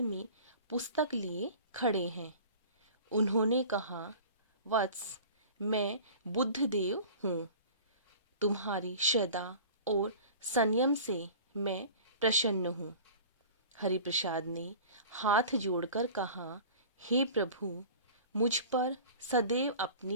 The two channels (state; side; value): inverted; both; correlation -0.41